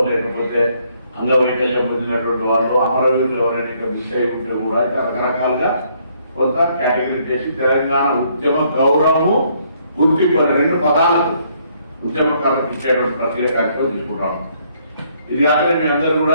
లేకపోతే అంగవైకల్యం పొందినటువంటి వాళ్ళు, అమరవీరులు ఎవరైనా మిస్ అయి ఉంటే కూడా రకరకాలుగా కొంత కేటగిరీ చేసి తెలంగాణ ఉద్యమ గౌరవము, గుర్తింపు 2 పదాలకు ఉద్యమకారులకు ఇచ్చేటువంటి ప్రక్రియ కార్యక్రమం తీసుకుంటాము. ఇది కాక మీ అందరూ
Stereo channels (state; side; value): inverted; both; correlation -0.68